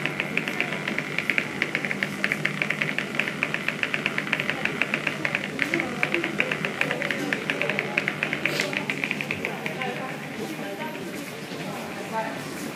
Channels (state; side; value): identical; both; correlation 1.00